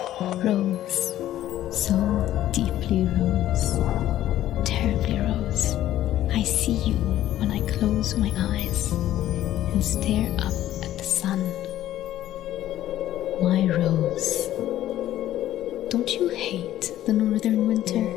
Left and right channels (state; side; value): quieter; right; 13.1 dB